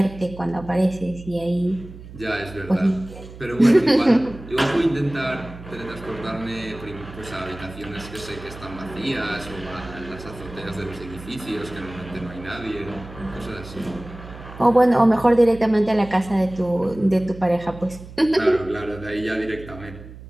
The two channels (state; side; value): noise; right; hum, 16 dB below the sound